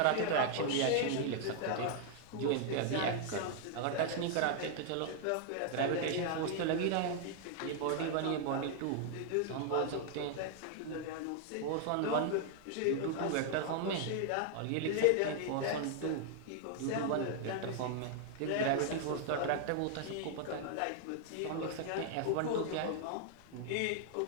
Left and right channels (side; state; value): both; different; correlation 0.00